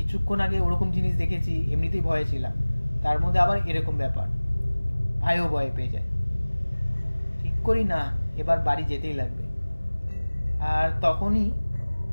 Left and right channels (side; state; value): both; inverted; correlation -1.00